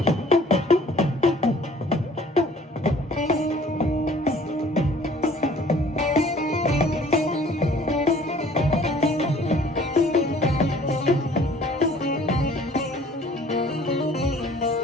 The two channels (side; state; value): both; normal; correlation 0.53